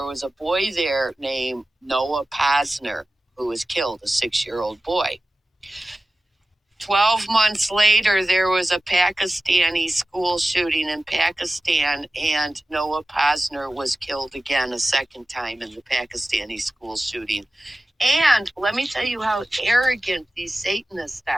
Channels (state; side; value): normal; both; correlation 0.95